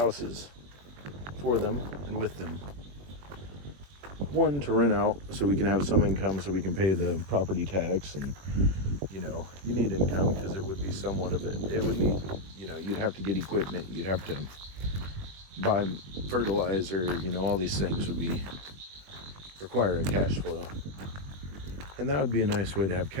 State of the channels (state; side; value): late; left; 21 ms